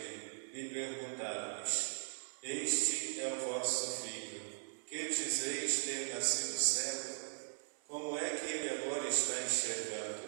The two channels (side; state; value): left; silent; 52 dB below the other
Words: e perguntaram-lhes: este é o vosso filho, que dizeis ter nascido cego? Como é que ele agora está